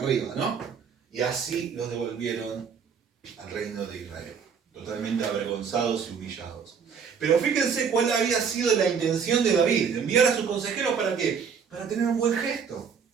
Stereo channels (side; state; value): left; quieter; 6.5 dB